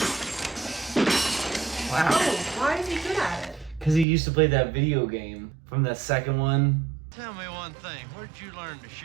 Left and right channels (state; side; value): drops out; left; at 4.0 s